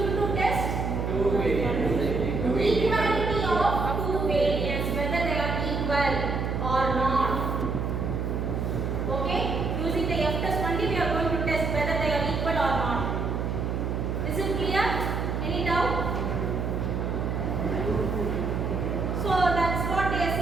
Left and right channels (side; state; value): right; noise; hum, 1 dB below the sound